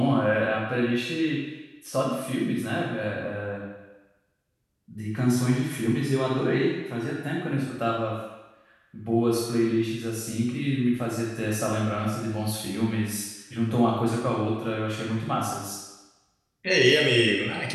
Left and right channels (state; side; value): identical; both; correlation 1.00